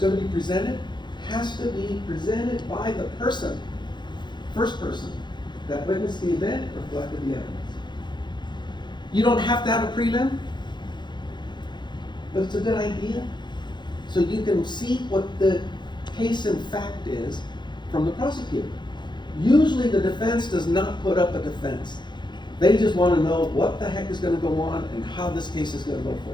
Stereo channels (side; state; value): right; late; 0.22 ms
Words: to be presented has to be presented by the person, first person, that witnessed the event or collected the evidence. You don't have to have a prelim, but it's a good idea. So you can see what the case in fact is from the prosecutor. Usually the defense does not put up a defense. They just want to know what the heck is going to go on and how this case is going to go